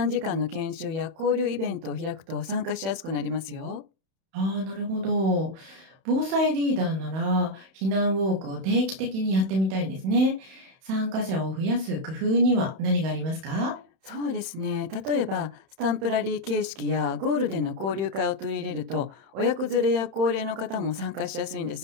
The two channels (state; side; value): late; left; 31 ms